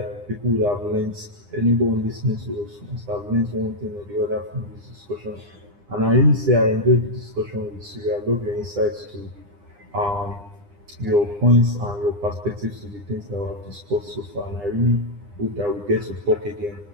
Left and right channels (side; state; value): left; late; 9.9 ms